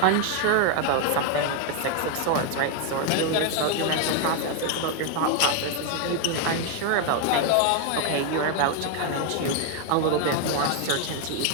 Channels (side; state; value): both; different; correlation 0.01